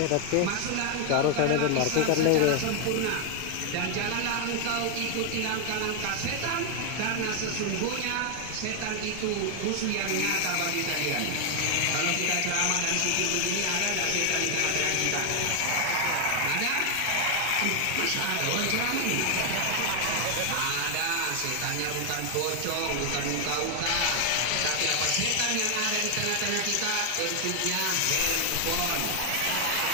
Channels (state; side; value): different; both; correlation 0.00